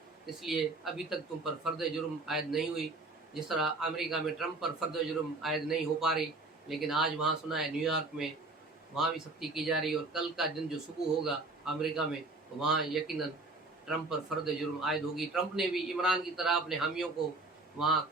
इसलिए अभी तक तुम पर फर्द जुर्म आयद नहीं हुई। जिस तरह अमेरिका में ट्रंप पर फर्द जुर्म आयद नहीं हो पा रही, लेकिन आज वहाँ सुना है न्यूयॉर्क में वहाँ भी सख्ती की जा रही है, और कल का दिन जो सुबह होगा अमेरिका में तो वहाँ यकीनन ट्रंप पर फर्द जुर्म आयद होगी। ट्रंप ने भी इमरान की तरह अपने हामियों को वहाँ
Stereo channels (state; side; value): quieter; left; 3.2 dB